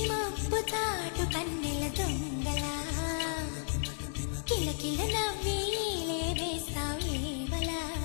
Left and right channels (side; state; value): right; silent; digital silence